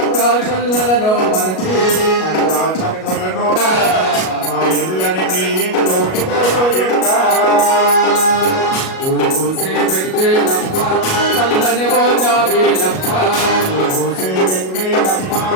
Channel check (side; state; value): right; late; 37 ms